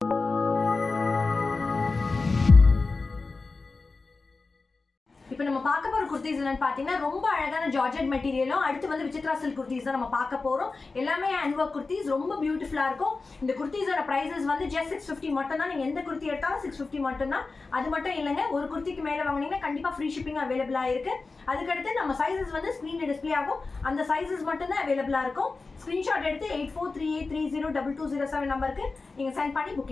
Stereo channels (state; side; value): quieter; right; 3.9 dB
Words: இப்போ நம்ம பார்க்க போற குர்தீஸ் என்னன்னு பாத்தீங்கன்னா ரொம்ப அழகான ஜார்ஜெட் மெட்டீரியலும் அடுத்து வந்து விசித்ரா சில்க் குர்தீஸ் தான் நம்ம பார்க்க போறோம். எல்லாமே ஹேண்ட் வொர்க் குர்தீஸ் ரொம்ப பியூட்டிஃபுல்லா இருக்கும். இந்த குர்தீஸோட பிரைசஸ் வந்து just 650 மட்டும் தான். நீங்க எந்த குர்த்தி எடுத்தாலும் 650 மட்டும் தான். அது மட்டும் இல்லங்க, ஒரு குர்த்திக்கு மேல வாங்குனீங்கன்னா கண்டிப்பா ஃப்ரீ ஷிப்பிங் அவைலபிளா இருக்கு. அதுக்கு அடுத்து நம்ம சைஸஸ் வந்து ஸ்கிரீன்ல டிஸ்ப்ளே ஆகும். அந்த சைஸஸ் மட்டும் தான் அவைலபிளா இருக்கும். ஸ்கிரீன்ஷாட் எடுத்து 8438302207 நம்பருக்கு நீங்க சென்ட் பண்ணி